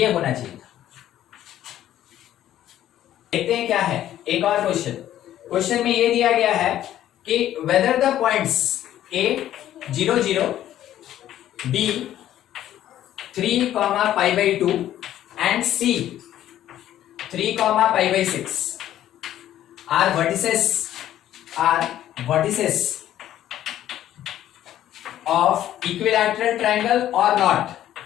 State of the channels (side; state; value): right; quieter; 12.3 dB